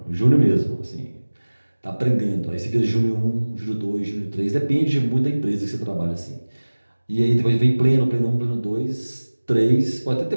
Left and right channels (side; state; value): both; inverted; correlation -1.00